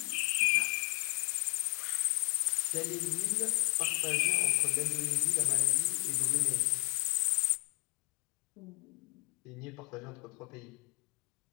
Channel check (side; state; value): right; quieter; 31.7 dB